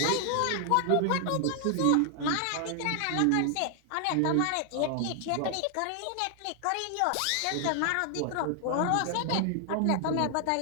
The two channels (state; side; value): different; both; correlation 0.00